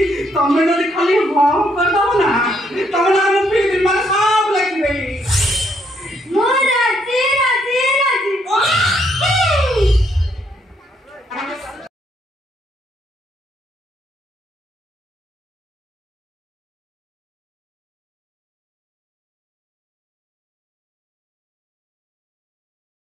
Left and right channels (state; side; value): normal; both; correlation 0.72